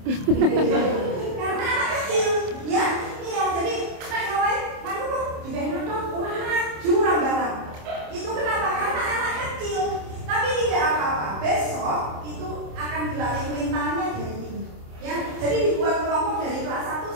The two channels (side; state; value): left; late; 27 ms